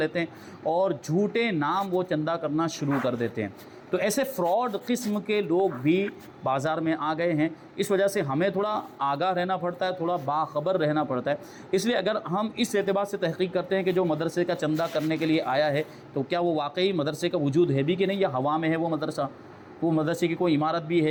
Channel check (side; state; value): both; identical; correlation 1.00